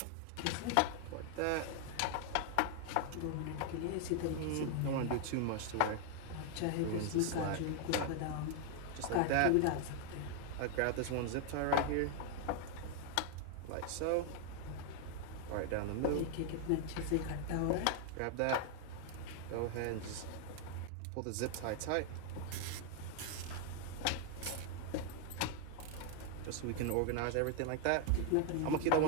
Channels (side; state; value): both; different; correlation 0.00